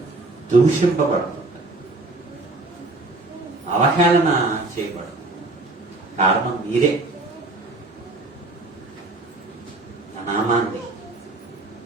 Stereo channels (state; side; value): quieter; left; 3.1 dB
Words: దూషింపబడుతుంది, అవహేళన చేయబడుతుంది. కారణం మీరే. నా నామాన్ని,